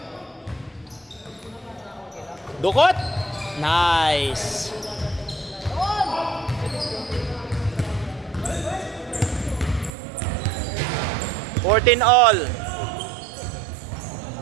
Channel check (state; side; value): drops out; left; at 9.9 s